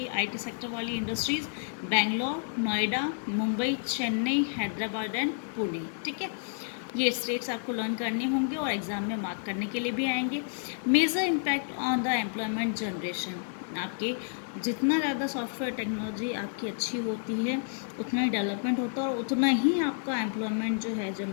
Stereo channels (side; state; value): right; silent; 56 dB below the other